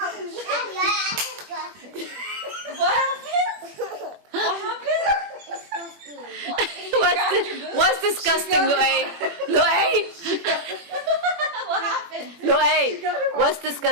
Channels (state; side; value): late; left; 21 ms